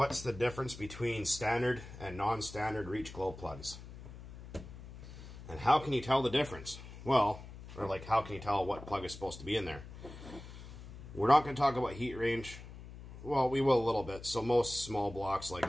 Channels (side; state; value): left; noise; hum, 14 dB below the sound